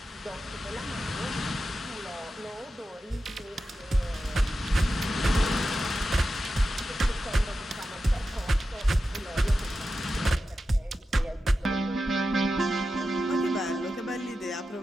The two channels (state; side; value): normal; both; correlation 0.91